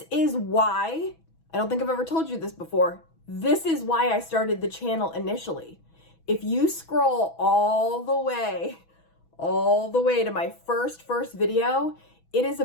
is why, I don't think I've ever told you this before, this is why I started the channel initially. If you scroll all the way to my first video, it is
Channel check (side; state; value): right; late; 6.1 ms